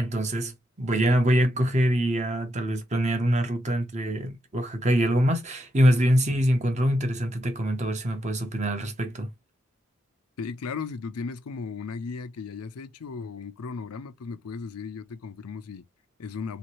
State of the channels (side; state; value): both; normal; correlation 0.82